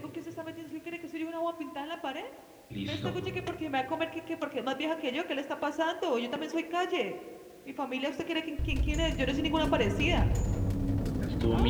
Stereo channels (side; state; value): both; identical; correlation 1.00